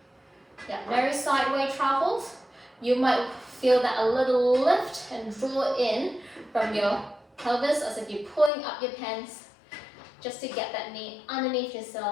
Yeah, no sideway travels. You might feel that a little lift and draw in from your pelvis as if you're pulling up your pants just to get that knee underneath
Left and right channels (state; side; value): drops out; right; at 8.5 s